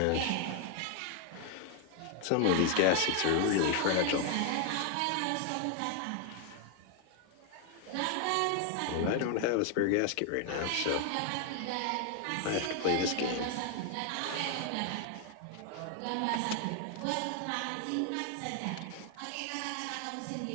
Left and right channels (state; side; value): different; both; correlation 0.00